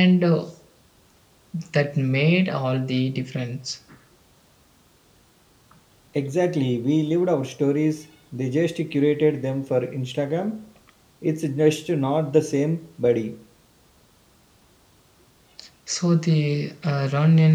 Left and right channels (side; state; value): both; identical; correlation 1.00